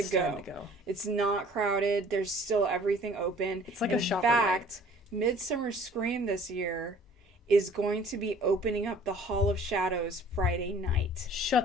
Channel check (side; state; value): both; normal; correlation 0.52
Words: go. It's not crowded. There's still everything open. It's like in a shopping fact, Midsummer Scream this year is going to be opening up the Hall of Shadows Friday night.